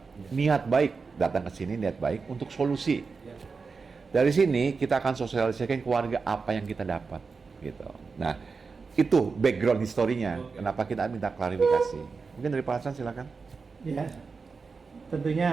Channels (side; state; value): left; quieter; 4.7 dB